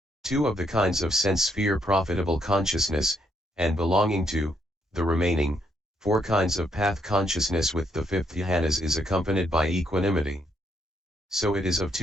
two of the kinds of sense sphere profitable consciousness, and belonging to the remaining four kinds of path consciousness with the fifth jhanas is accompanied by equanimity. So it is of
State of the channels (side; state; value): both; normal; correlation 0.74